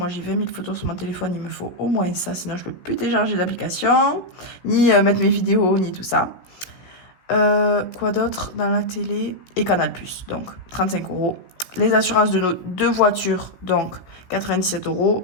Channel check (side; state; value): right; late; 16 ms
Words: j'ai 20 000 photos sur mon téléphone. Il me faut au moins ça. Sinon, je ne peux plus télécharger d'application, ni mettre mes vidéos, ni tout ça. Quoi d'autre dans la télé? Et Canal+. Donc, 35 euros. Les assurances de nos 2 voitures. Donc, 97